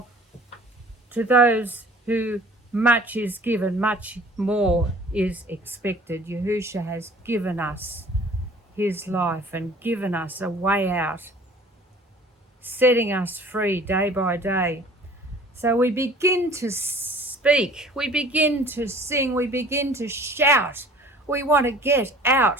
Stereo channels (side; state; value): both; normal; correlation 0.49